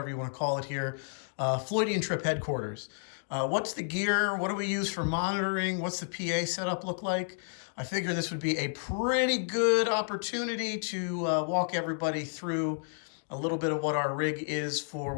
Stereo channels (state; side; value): silent; right; digital silence